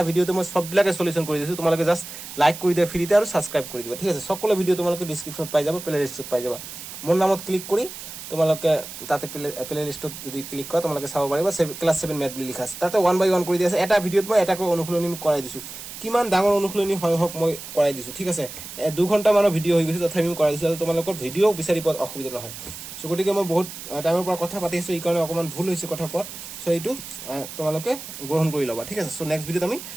ভিডিওতে মই সববিলাকে সলিউশন কৰি দিছো তোমালোকে জাস্ট লাইক কৰি দিয়া ফ্ৰীতে আৰু সাবস্ক্ৰাইব কৰি দিবা ঠিক আছে সকলো ভিডিও তোমালোকে ডেসক্ৰিপশনত পাই যাবা প্লে লিষ্টত পাই যাবা মোৰ নামত ক্লিক কৰি তোমালোকে তাতে প্লে লিষ্টত যদি ক্লিক কৰা তোমালোকে চাব পাৰিবা ক্লাস 7 ম্যাথ বুলি লিখা আছে তাতে 1 বাই 1 কৰি দিয়া আছে এটা ভিডিওত মই এটা কৰি অনুশীলনী কৰাই দিছো কিমান ডাঙৰ অনুশীলনী হয় হক মই কৰাই দিছো ঠিক আছে 2 ঘন্টা মানৰ ভিডিও হৈ গৈছে তথাপি মই কৰাই দিছো তোমালোকৰ ভিডিও বিচাৰি পোৱাত অসুবিধা নহয় সো গতিকে মই বহুত টাইমৰ পৰা কথা পাতি আছো এই কাৰণে অকমান ভুল হৈছে কথা কোৱা সো এইটো তোমালোকে গ্ৰহণ কৰি লবা ঠিক আছে সো নেক্সট ভিডিওত আমি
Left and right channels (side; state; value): right; noise; hiss, 11 dB below the sound